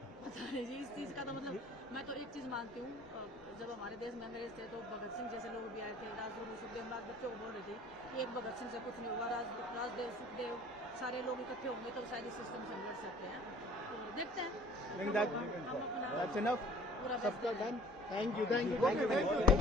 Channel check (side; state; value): both; normal; correlation 0.51